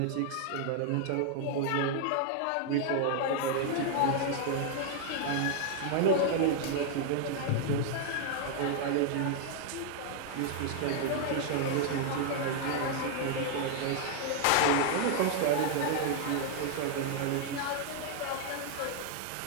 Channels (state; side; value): different; both; correlation 0.00